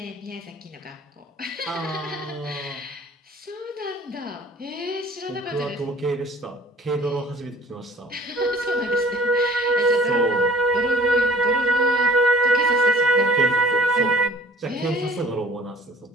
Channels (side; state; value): both; normal; correlation 0.51